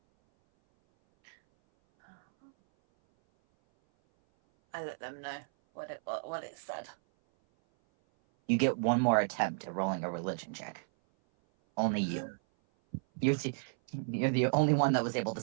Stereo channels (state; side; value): silent; left; 56 dB below the other